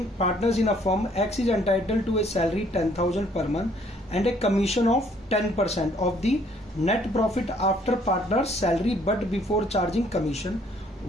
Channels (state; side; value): normal; both; correlation 0.63